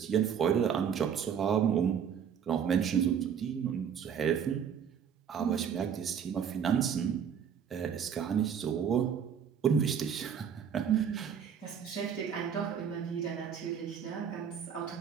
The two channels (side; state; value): left; quieter; 7.8 dB